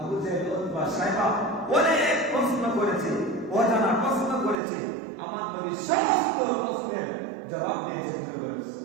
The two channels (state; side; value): drops out; left; at 4.5 s